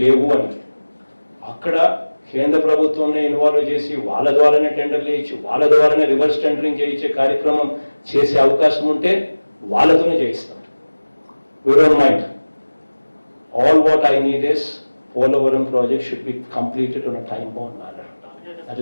లేవు అని. అక్కడ కేంద్ర ప్రభుత్వంని ఇన్వాల్వ్ చేసి వాళ్ళ ద్వారానే టెండర్లు వేయించి వాళ్ళ ద్వారానే రివర్స్ టెండరింగ్ చేయించే కార్యక్రమం చేసే అవకాశం ఉంటే వాళ్ళతోనే చేయిస్తాం. We don't mind. All what I need is Polavaram project should be completed on a time-bound manner. That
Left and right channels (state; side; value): inverted; both; correlation -1.00